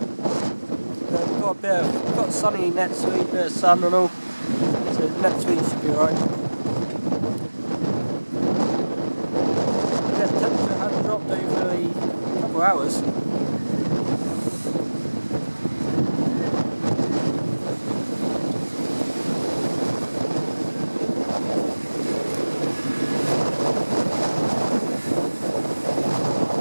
We've got sunny next week, bit of sun and all. So next week should be alright. hours.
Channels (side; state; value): both; inverted; correlation -1.00